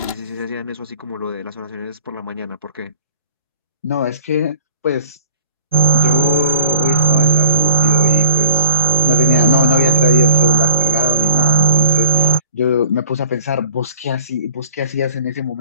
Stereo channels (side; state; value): both; inverted; correlation -0.42